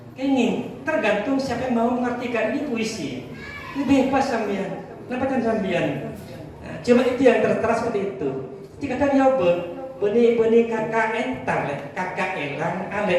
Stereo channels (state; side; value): identical; both; correlation 1.00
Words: Ini tergantung siapa yang mau mengartikan ini puisi. Ini bebas sambian. Kenapa kan sambian? Nah, cuma itu yang tertera seperti itu. Jika kan nyoba, beni kakak entang, kakak elang,